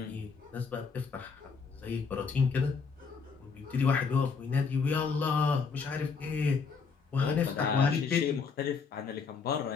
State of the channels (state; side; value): quieter; right; 5.2 dB